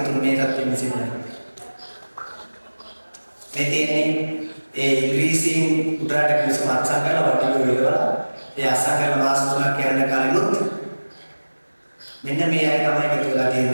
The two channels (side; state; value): both; inverted; correlation -1.00